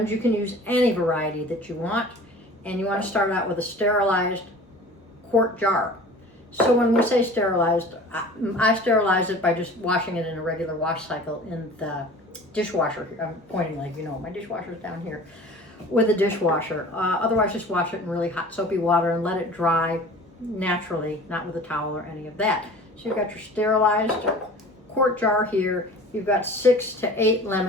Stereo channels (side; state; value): both; normal; correlation 0.42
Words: You can use any variety that you want, and you want to start out with a sterilized quart jar. So when we say sterilized, I sterilize it by just washing it in a regular wash cycle in the dishwasher. I'm pointing like, you know, my dishwasher's down here, with a dishwasher. Otherwise, just wash it in really hot soapy water and let it dry naturally, not with a towel or any of that. So you've got your sterilized quart jar here. You've got 6 to 8